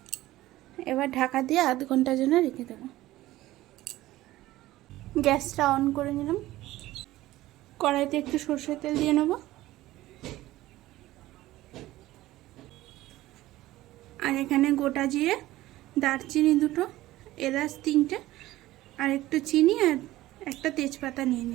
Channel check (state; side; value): quieter; left; 16.4 dB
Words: এবার ঢাকা দিয়ে আধ ঘন্টার জন্য রেখে দেবো। গ্যাসটা অন করে নিলাম। কড়াইতে একটু সর্ষের তেল দিয়ে নেব। আর এখানে গোটা জিরে, দারচিনি 2টো, এলাচ 3টে, আর একটু চিনি আর একটা তেজপাতা নিয়ে